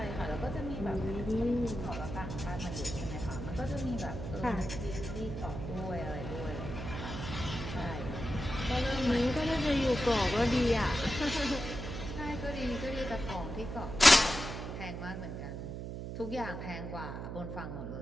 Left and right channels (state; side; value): noise; right; hum, 6 dB below the sound